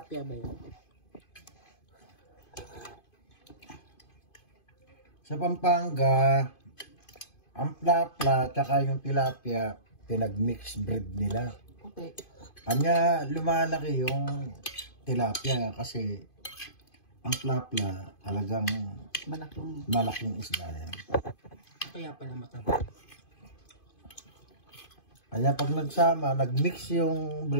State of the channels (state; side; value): late; right; 2.5 ms